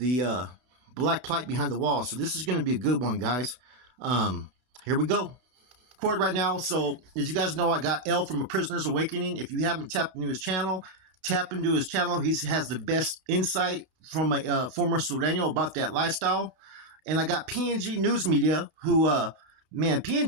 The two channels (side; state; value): left; late; 32 ms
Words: black plight behind the wall. So this is gonna be a good one, guys. Here we go. Record right now. So as you guys know, I got L from A Prisoner's Awakening. If you haven't tapped into his channel, tap into his channel. He has the best insight from a former Sureno about that lifestyle. And I got PNG News Media, who man,